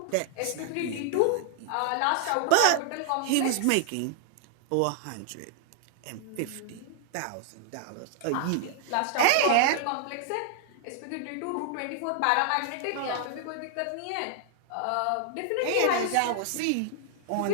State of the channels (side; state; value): both; different; correlation 0.00